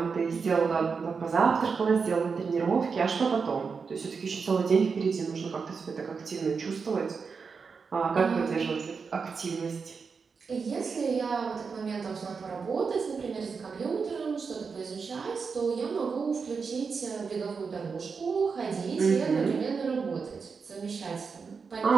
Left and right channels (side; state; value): left; quieter; 5.3 dB